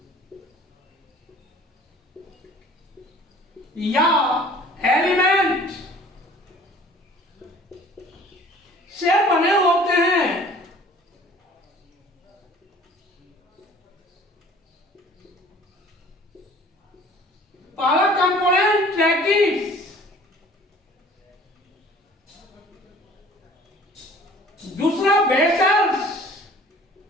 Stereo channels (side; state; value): both; normal; correlation 0.50